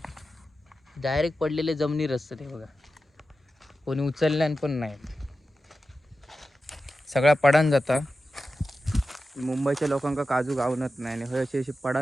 डायरेक्ट पडलेले जमिनीर असतात. हे बघा कोणी उचलल्यान पण नाही, सगळा पडान जाता. मुंबईच्या लोकांका काजू गावनत नाही आणि हे असे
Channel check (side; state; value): both; normal; correlation 0.92